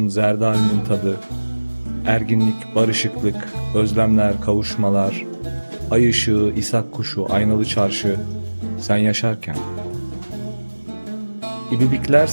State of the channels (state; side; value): inverted; both; correlation -1.00